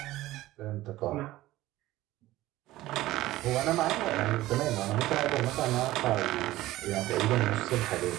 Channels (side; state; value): left; quieter; 16.6 dB